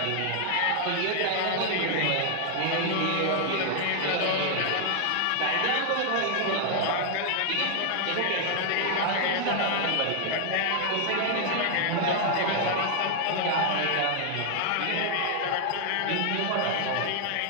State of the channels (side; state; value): both; different; correlation 0.00